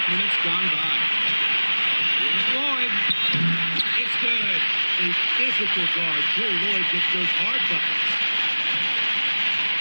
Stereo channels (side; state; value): both; inverted; correlation -1.00